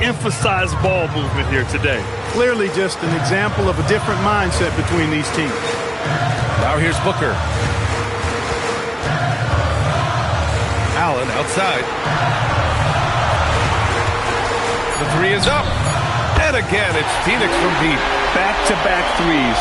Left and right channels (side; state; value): both; identical; correlation 1.00